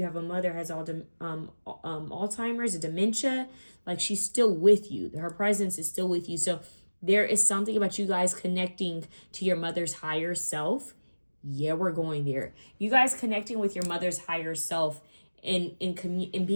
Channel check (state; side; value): inverted; both; correlation -1.00